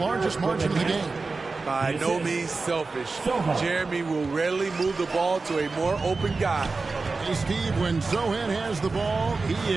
margin of the game. By no means selfish. Jeremy will rarely move the ball to a more open guy. Hey, Steve, when Sohan has the ball, he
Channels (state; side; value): quieter; left; 4.0 dB